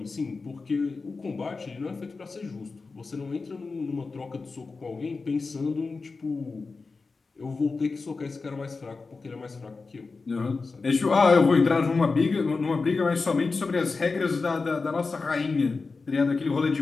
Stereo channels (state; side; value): quieter; right; 4.2 dB